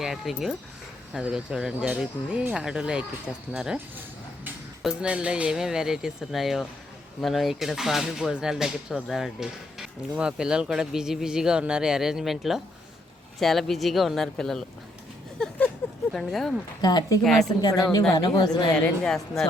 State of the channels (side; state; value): both; normal; correlation 0.74